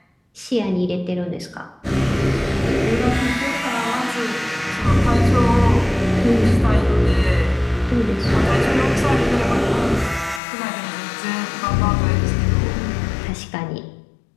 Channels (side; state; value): right; drops out; at 10.4 s